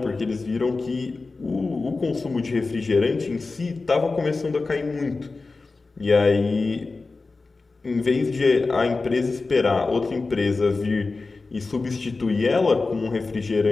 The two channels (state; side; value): quieter; right; 3.8 dB